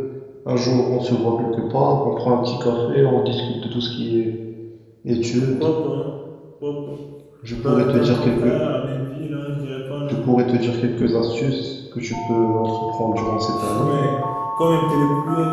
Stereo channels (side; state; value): both; identical; correlation 1.00